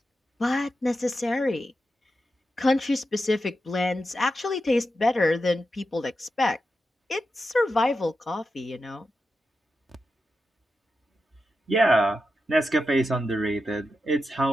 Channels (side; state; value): both; normal; correlation 0.89